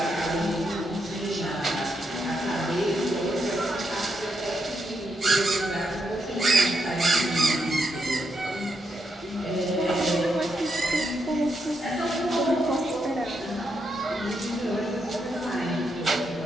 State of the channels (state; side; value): normal; both; correlation 0.81